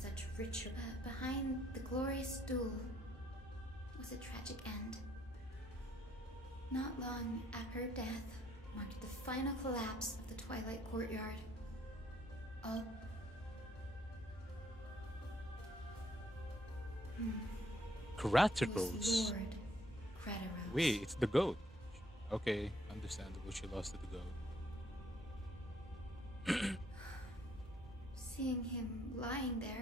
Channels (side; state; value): both; normal; correlation 0.68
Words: ritual. Behind the glorious duel was a tragic end. Not long after her death marked the final collapse of the Twilight Courtyard. All... Kratos. Lord Kratos. Wait, it's the goat. Okay, understandable. She lost to the goat. Seeing him lying